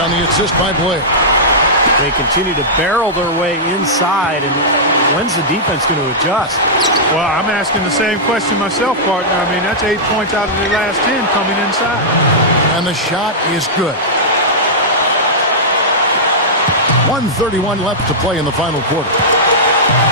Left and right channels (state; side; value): normal; both; correlation -0.12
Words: the assist by Blair. They continue to barrel their way inside, and when's the defense going to adjust? Well, I'm asking the same question myself, partner. I mean, that's 8 points out of the last 10 coming inside. And the shot is good. 1:31 left to play in the final quarter.